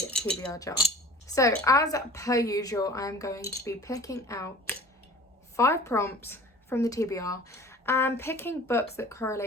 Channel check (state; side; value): normal; both; correlation 0.44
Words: jar. So as per usual, I'm going to be picking out 5 prompts from the TBR and picking books that